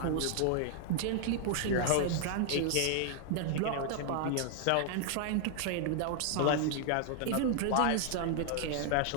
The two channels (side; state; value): both; different; correlation 0.00